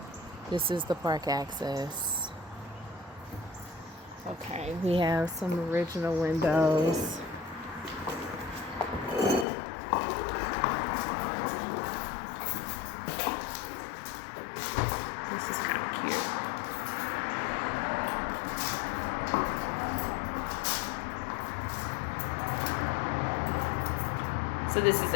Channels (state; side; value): drops out; right; at 9.5 s